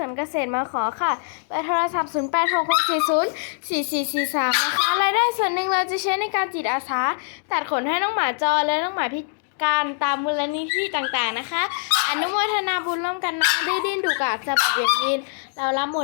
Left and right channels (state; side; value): silent; right; digital silence